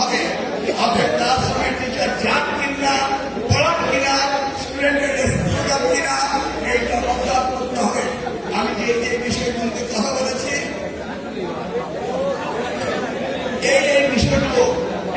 হবে। আপনার ক্লাসরুমের টিচার যান কিনা, পড়ান কিনা, স্টুডেন্টের রেসপন্স কিনা, এইটা অবজার্ভ করতে হবে। আমি যে বিষয়গুলোতে কথা বলেছি এই বিষয়গুলো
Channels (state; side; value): identical; both; correlation 1.00